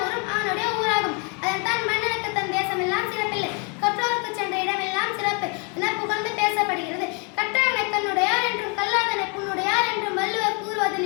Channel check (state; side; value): quieter; right; 34.9 dB